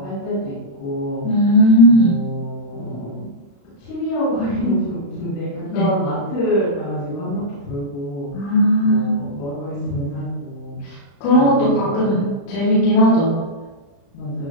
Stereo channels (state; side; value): late; right; 35 ms